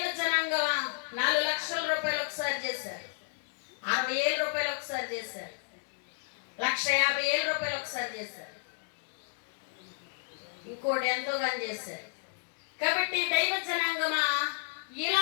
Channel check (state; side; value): silent; right; digital silence